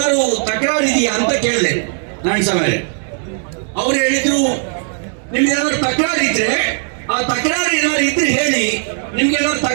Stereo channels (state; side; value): silent; left; 56 dB below the other